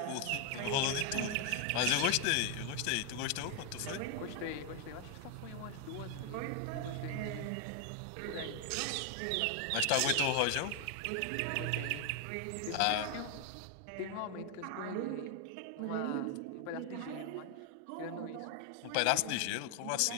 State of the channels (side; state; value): both; different; correlation 0.01